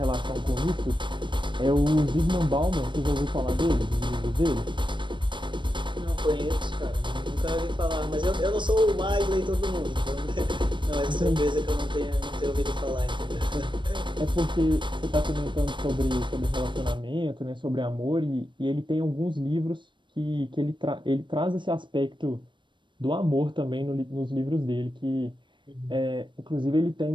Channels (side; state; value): left; late; 0.23 ms